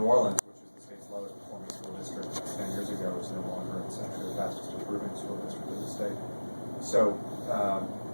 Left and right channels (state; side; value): inverted; both; correlation -1.00